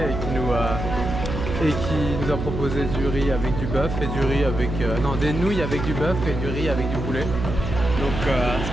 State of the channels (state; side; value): noise; right; hum, 5 dB below the sound